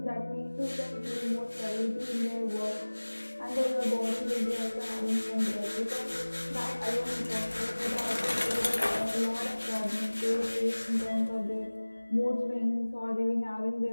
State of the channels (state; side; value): inverted; both; correlation -1.00